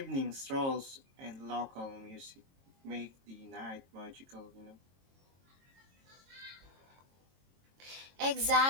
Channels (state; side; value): late; left; 22 ms